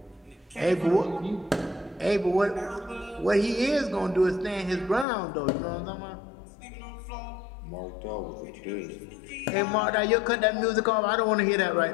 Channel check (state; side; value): drops out; right; at 5.1 s